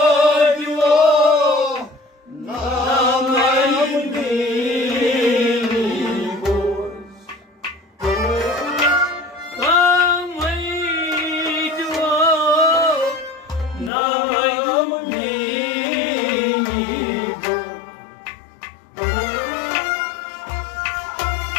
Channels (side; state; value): right; drops out; at 13.9 s